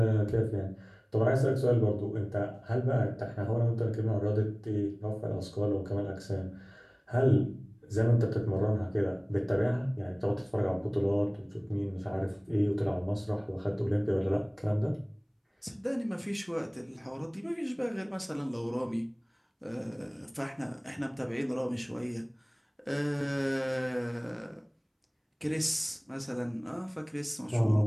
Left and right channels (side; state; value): both; identical; correlation 1.00